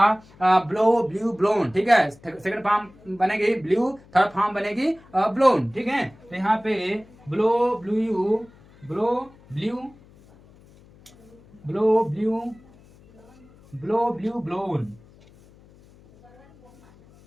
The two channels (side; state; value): left; noise; hum, 26 dB below the sound